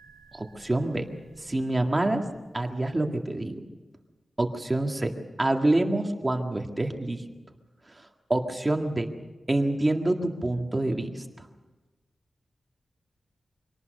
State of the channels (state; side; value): normal; both; correlation 0.98